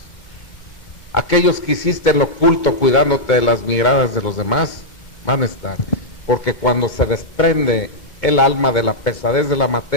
Aquellos que hiciste en lo oculto cuidándote de las miradas de los demás, van a estar. Porque cuando se desprende el alma de la pesadez de la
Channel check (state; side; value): late; right; 1.8 ms